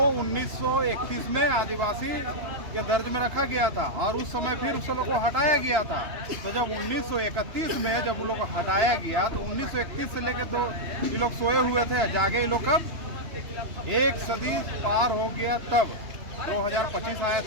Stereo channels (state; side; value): late; left; 2.9 ms